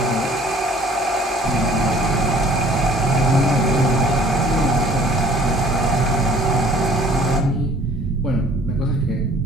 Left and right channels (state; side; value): normal; both; correlation 0.53